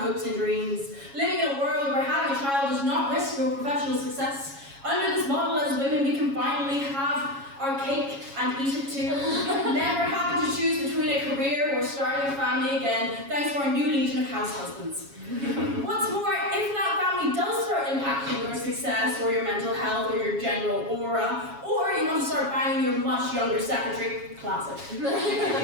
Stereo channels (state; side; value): late; left; 7.2 ms